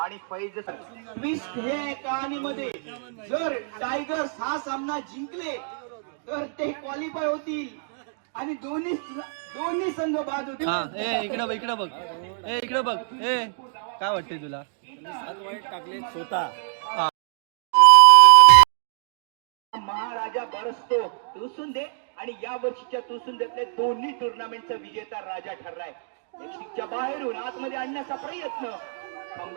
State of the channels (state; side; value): silent; left; digital silence